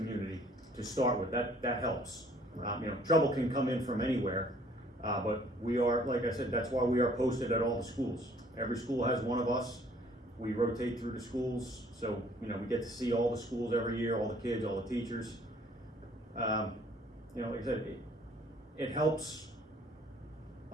to start with. That helps. Trouble can come in from anywhere. But we are, like I said, that's why we are posted at all the schools. Every school has one of us. We rotate through the schools, so we get to see all the schools every year, all the kids, all the teachers. Like I said, it helps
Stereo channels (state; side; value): normal; both; correlation 0.58